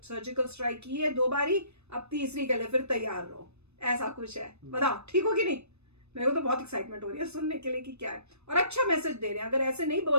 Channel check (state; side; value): late; left; 0.80 ms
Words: स्ट्राइक की है 2 बारी, अब तीसरी के लिए फिर तैयार रहो, ऐसा कुछ है। बताओ ठीक हो कि नहीं? मेरे को तो बहुत एक्साइटमेंट हो रही है सुनने के लिए कि क्या है, और अच्छा मैसेज दे रहे हैं। अगर ऐसे नहीं